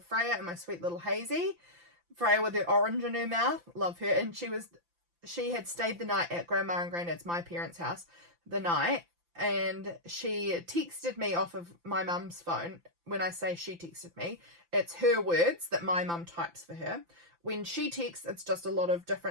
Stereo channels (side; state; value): left; late; 5.9 ms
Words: Freya and my sweet little Hazy. Freya with her orange in her mouth, love her. And she had stayed the night at Grandma and Granddad's, my parents' house, the night, and she texted me off of my mum's phone. When I say she texted me, it's her words that my mum types for her. When she texts, it's just a lot of